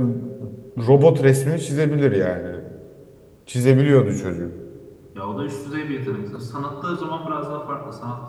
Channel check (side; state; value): both; identical; correlation 1.00